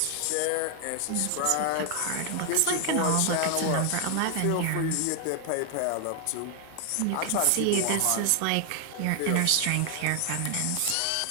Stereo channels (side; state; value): both; different; correlation 0.00